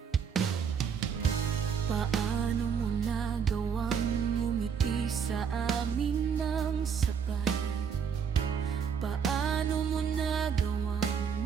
Paano mo nagawang ngumiti sa amin ng sabay? Paano mo nagawang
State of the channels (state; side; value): quieter; left; 7.0 dB